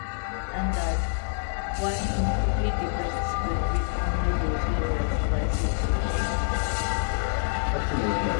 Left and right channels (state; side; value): silent; right; digital silence